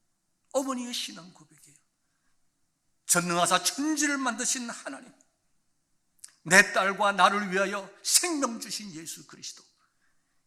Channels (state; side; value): identical; both; correlation 1.00